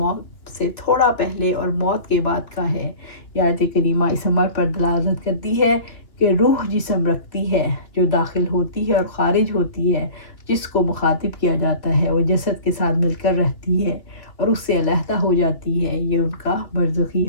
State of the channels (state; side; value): late; right; 2.6 ms